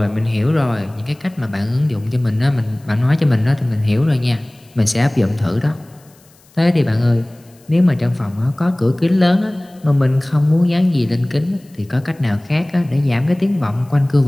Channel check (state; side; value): noise; left; hiss, 30 dB below the sound